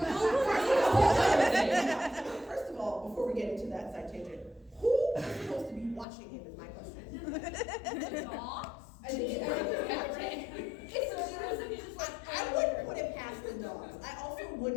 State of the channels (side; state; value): right; drops out; at 6.1 s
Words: first of all, before we get into that side tangent, who is supposed to be watching him is my question. Dogs? I think I wouldn't put it past the dogs. I also